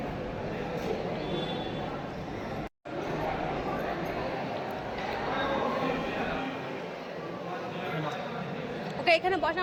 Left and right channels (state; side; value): identical; both; correlation 1.00